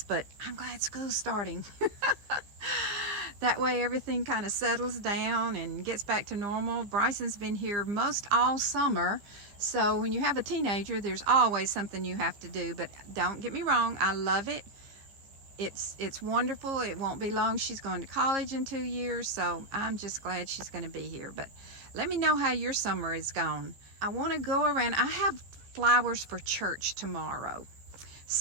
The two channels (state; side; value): late; left; 14 ms